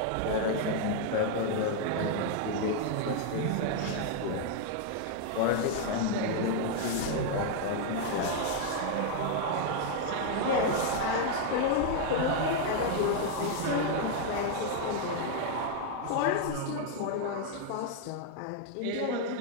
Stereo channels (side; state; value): both; different; correlation 0.00